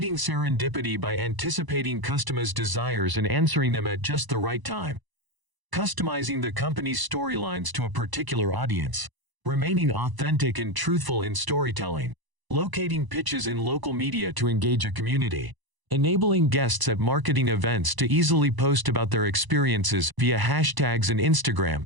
serendipity by anticipating customers' desires and answering them at just the right time. Customizing the company's storylines to a particular audience. Remaining authentic and truthful in storytelling. Locating pitches in local media to engage a community. enabling guests at marketing events to easily post about their experiences via hashtags and Instagram.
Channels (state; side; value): late; left; 1.0 ms